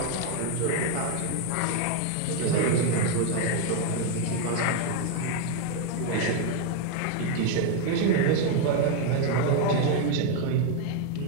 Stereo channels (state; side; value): different; both; correlation 0.01